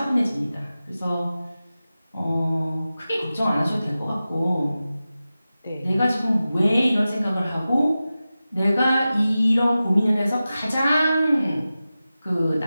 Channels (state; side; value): inverted; both; correlation -0.95